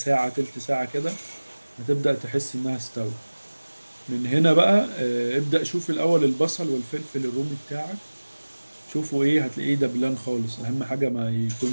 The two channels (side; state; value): both; inverted; correlation -1.00